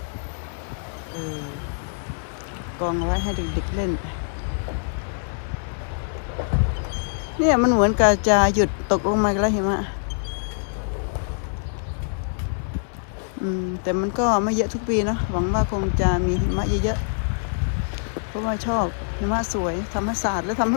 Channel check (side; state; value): right; silent; digital silence